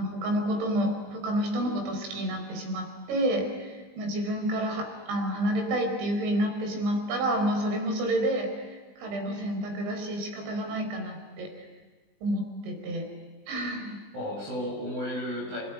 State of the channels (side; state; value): left; late; 20 ms